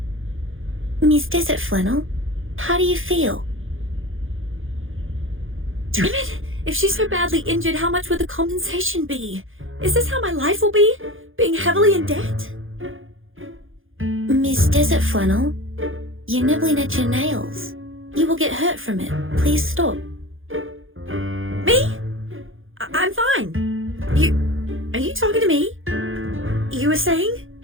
Miss Desert Flannel, how do you feel?" Damn it! If she's so badly injured, how much would the compensation be? Is this how my life will be? Being heavily in debt? Miss Desert Flannel, you're nibbling at your nails. You will get hurt from it. Please stop. Me? I'm fine. Are you talking to me? You were saying?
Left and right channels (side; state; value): left; late; 0.59 ms